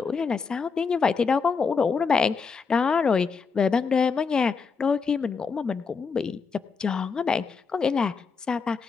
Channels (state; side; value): quieter; right; 5.3 dB